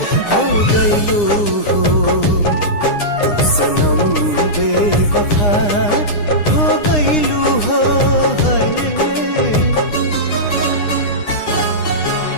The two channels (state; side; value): late; right; 9.8 ms